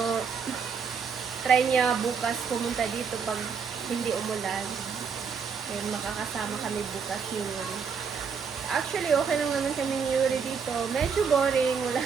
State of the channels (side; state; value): left; quieter; 6.2 dB